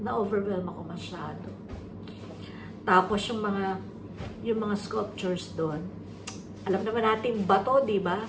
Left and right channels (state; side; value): identical; both; correlation 1.00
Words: Na-overwhelm ako masyado. Tapos yung mga sculptures doon, alam naman natin bato, di ba?